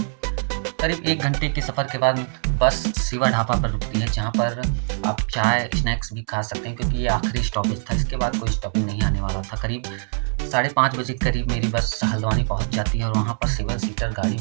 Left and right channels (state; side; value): silent; left; 63 dB below the other